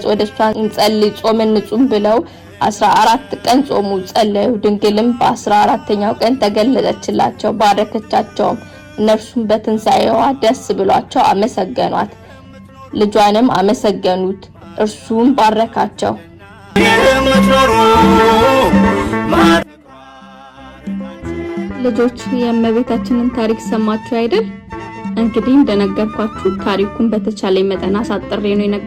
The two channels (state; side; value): identical; both; correlation 1.00